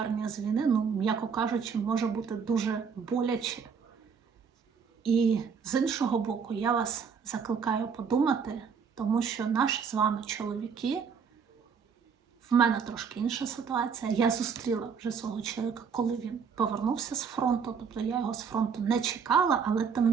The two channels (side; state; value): left; quieter; 6.3 dB